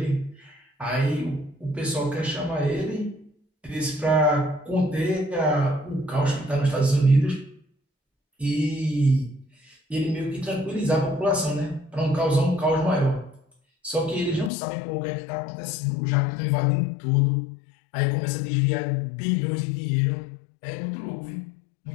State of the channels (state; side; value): drops out; right; at 14.5 s